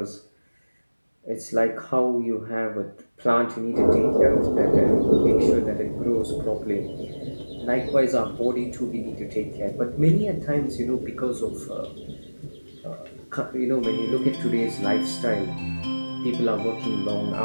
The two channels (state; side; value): inverted; both; correlation -1.00